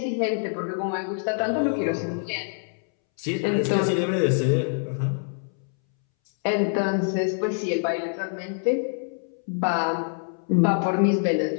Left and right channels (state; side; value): silent; right; 61 dB below the other